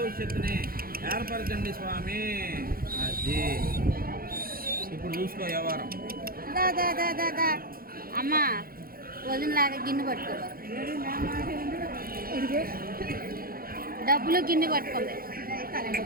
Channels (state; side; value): late; left; 0.42 ms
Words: ఏర్పరచండి స్వామి. అది ఇప్పుడు చూసుకో వ్యవహారం. అమ్మా వదినలాగా గిన్నె పట్టుకో, డబ్బులు గిన్నె పట్టుకోండి.